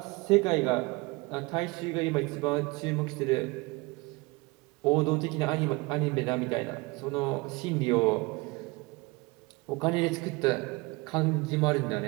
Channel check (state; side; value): quieter; left; 24.7 dB